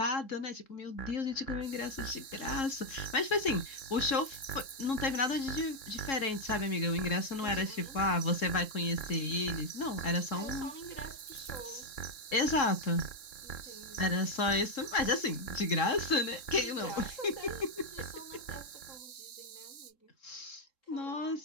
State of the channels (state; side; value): late; right; 3.7 ms